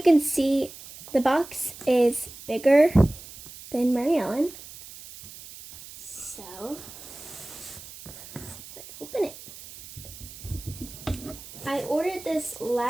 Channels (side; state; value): right; noise; hiss, 16 dB below the sound